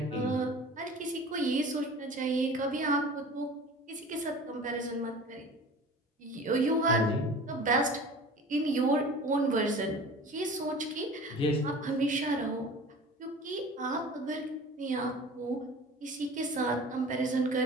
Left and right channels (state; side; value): normal; both; correlation 0.40